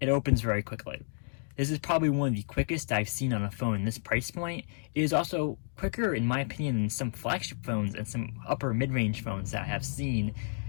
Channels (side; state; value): right; silent; digital silence